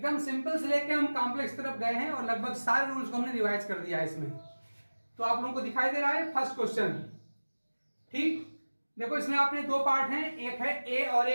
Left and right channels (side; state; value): both; inverted; correlation -1.00